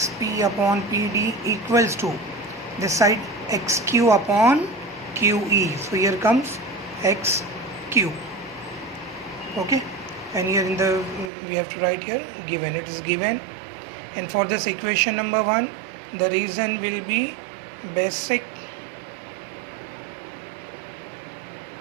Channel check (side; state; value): left; drops out; at 11.3 s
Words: upon PD equals to this side XQ upon QE. So here comes XQ. Okay, and here in the we have to write here given, it is given. And for this equation number 1, the reason will be basic